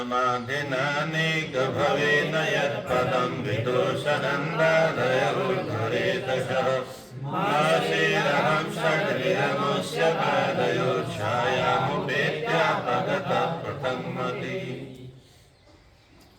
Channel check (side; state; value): both; identical; correlation 1.00